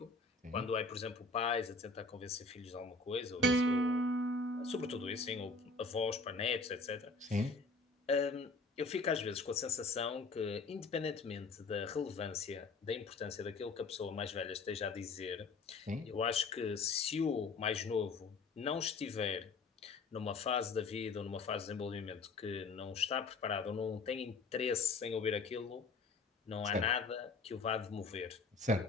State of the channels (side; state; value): right; quieter; 3.9 dB